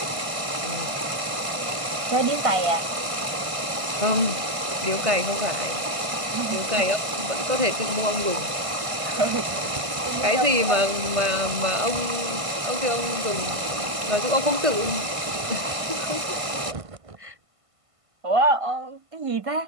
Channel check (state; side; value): late; left; 1.5 ms